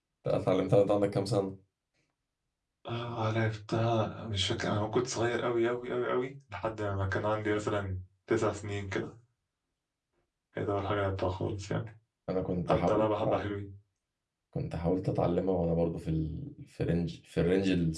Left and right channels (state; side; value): identical; both; correlation 1.00